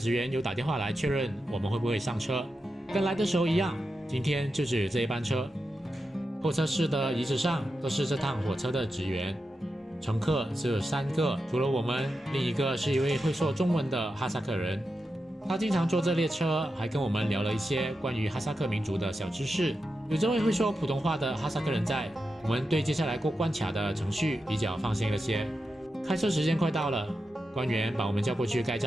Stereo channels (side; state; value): both; normal; correlation 0.89